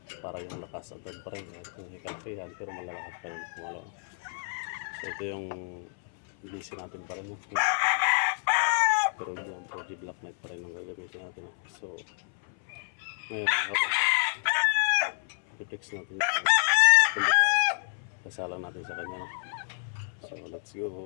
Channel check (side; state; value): right; silent; 58 dB below the other